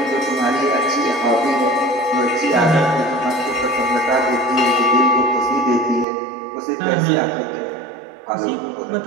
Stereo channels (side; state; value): left; drops out; at 6.1 s